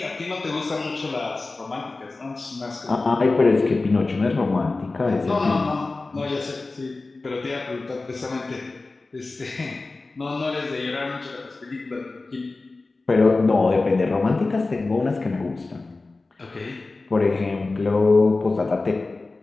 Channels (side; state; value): right; quieter; 3.4 dB